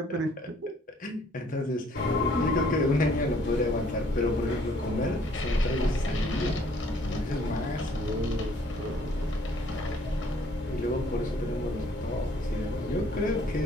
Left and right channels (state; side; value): normal; both; correlation 0.61